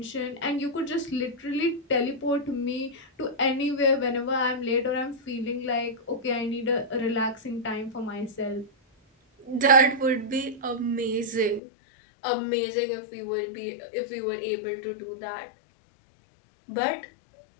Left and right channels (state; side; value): drops out; right; at 11.6 s